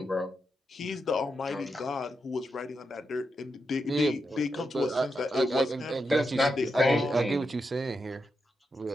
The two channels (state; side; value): normal; both; correlation 0.86